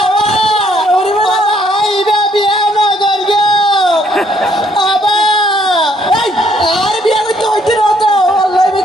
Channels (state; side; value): normal; both; correlation 0.67